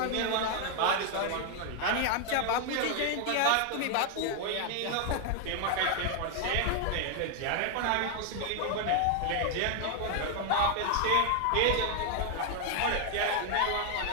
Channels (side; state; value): both; different; correlation 0.00